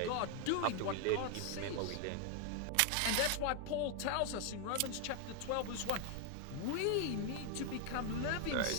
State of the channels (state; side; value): different; both; correlation 0.00